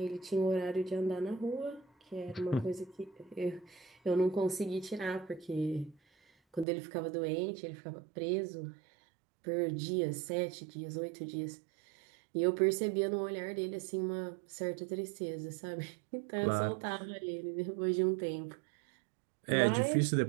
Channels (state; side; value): drops out; left; at 6.7 s